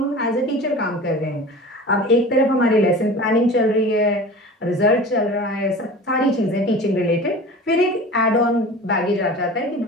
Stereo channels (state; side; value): normal; both; correlation 0.37